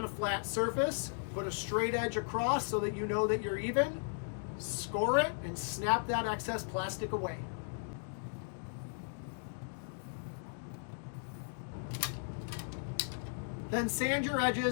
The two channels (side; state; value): right; silent; digital silence